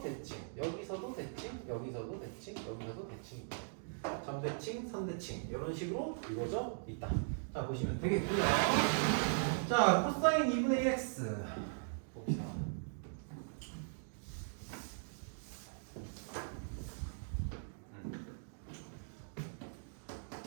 대칭, 여기서도 대칭, 여기서도 대칭, 여기서도 대칭입니다. 점대칭, 선대칭 이런 식으로 이루어져 있다. 자, 보시면 되겠고요. 자, 코사인 2분의 1x 봅시다.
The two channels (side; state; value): left; silent; digital silence